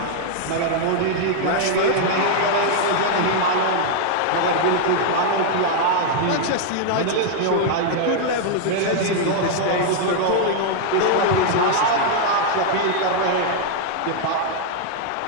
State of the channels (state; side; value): different; both; correlation 0.00